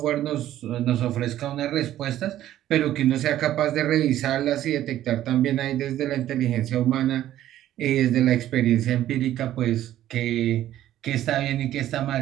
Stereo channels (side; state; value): left; quieter; 12.8 dB